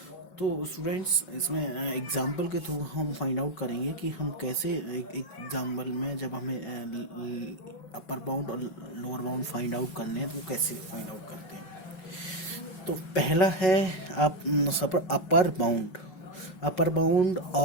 तो स्टूडेंट्स इसमें एग्जांपल के थ्रू हम फाइंड आउट करेंगे कि हम कैसे एक एग्जांपल में जब हमें अपर बाउंड और लोअर बाउंड फाइंड आउट करने हैं तो वो कैसे फाइंड आउट करते हैं। तो पहला है आप अपर बाउंड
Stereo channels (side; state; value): right; late; 5.4 ms